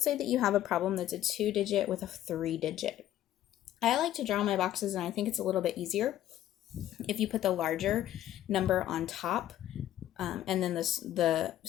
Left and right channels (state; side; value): quieter; right; 12.5 dB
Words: say that you have a problem that's a 2-digit with a 3-digit. I like to draw my boxes, and I think it's a little bit easier if you put the larger number on top and then the